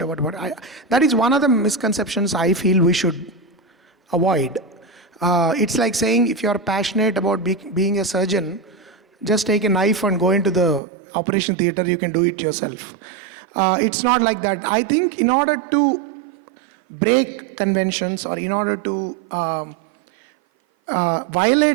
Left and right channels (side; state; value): left; drops out; at 10.8 s